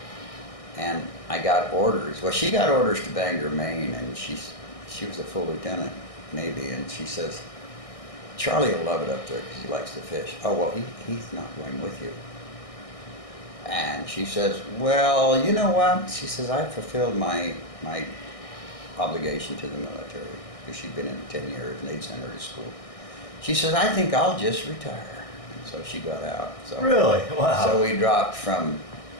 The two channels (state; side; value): late; right; 1.6 ms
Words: and I got orders. Well, she got orders to Bangor, Maine, and she was a full lieutenant, Navy, and she says, Charlie will love it up there because he likes to fish. Oh, well, he's not going with you. And she says, well, you know what? She says, I've fulfilled my obligation to the military, because she'd been in 10 years and they'd sent her to school. She says, I think I'll just retire. And so she got out. So, really? Wow. So we dropped from